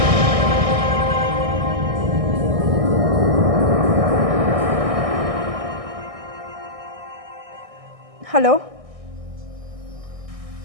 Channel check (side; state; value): left; late; 1.6 ms